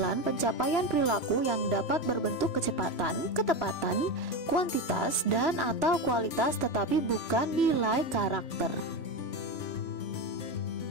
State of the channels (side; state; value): right; late; 3.0 ms